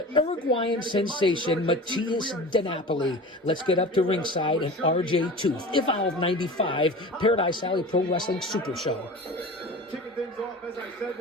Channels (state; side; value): normal; both; correlation 0.35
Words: Uruguayan sensation Matias DiNapoli. Let's get up to ringside and RJ Tooth. Evolve 95, Paradise Alley Pro Wrestling Super Show. Kicking things off, as I said,